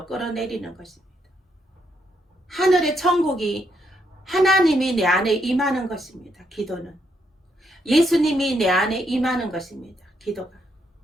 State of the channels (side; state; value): both; normal; correlation 0.76